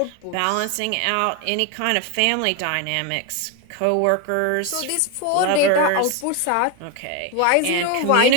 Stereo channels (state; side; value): different; both; correlation 0.01